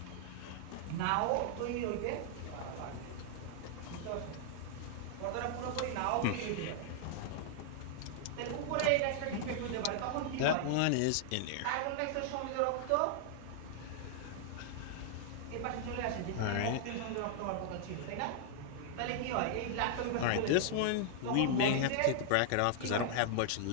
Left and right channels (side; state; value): both; different; correlation -0.01